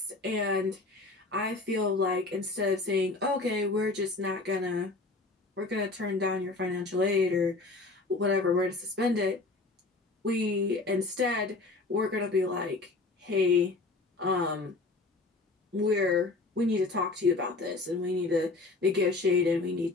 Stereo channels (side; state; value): right; quieter; 3.5 dB